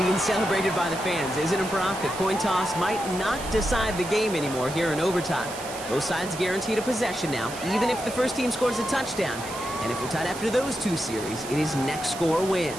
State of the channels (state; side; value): noise; right; hiss, 12 dB below the sound